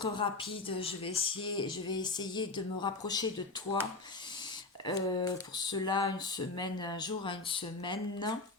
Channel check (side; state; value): right; quieter; 3.4 dB